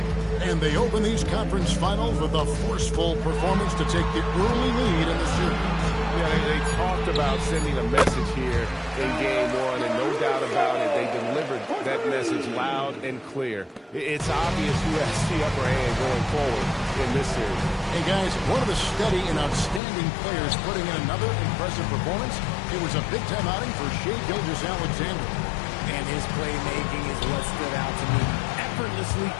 And they open these conference finals with a forceful performance to take the early lead in the series. Yeah, they talked about sending a message here in Game 1, and no doubt about it, they delivered that message loud and clear. It's obvious who has the upper hand going forward in this series. Hey, guys, one of the steady and outstanding players putting in another impressive performance. It was a big-time outing for Shai Gilgeous-Alexander. And his playmaking is what stood out to me. Effortlessly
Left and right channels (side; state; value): right; drops out; at 19.8 s